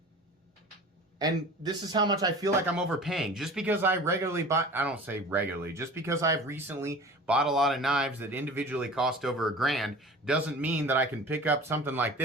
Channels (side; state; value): both; normal; correlation 0.40